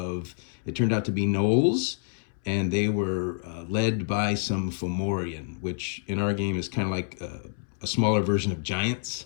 it turned out to be gnolls, and they were led by some Fomorian, which in our game is kind of like a smaller version of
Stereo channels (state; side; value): silent; right; 60 dB below the other